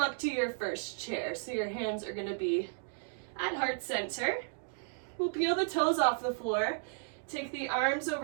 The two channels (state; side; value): silent; left; digital silence